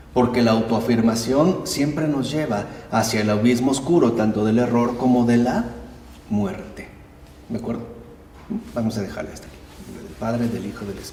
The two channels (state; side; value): identical; both; correlation 1.00